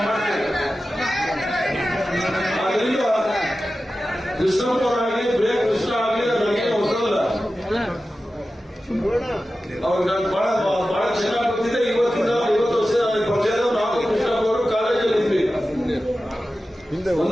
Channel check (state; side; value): normal; both; correlation 0.94